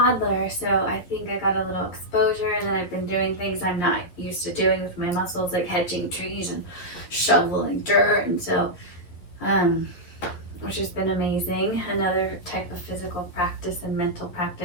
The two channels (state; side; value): late; right; 11 ms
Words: So I think I got a little exposure, and then I've been doing things I'm not used to doing with my muscles, like hedging trees and shoveling dirt, and so which has been amazing. Another type of physical practice and mental